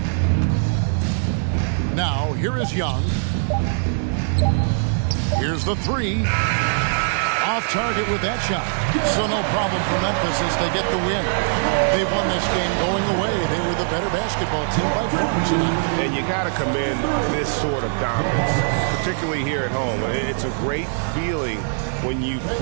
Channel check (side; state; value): left; silent; digital silence